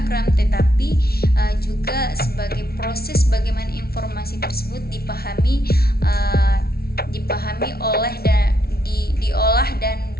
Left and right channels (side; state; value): right; late; 0.44 ms